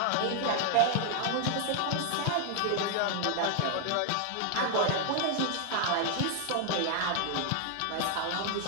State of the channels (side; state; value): both; different; correlation 0.00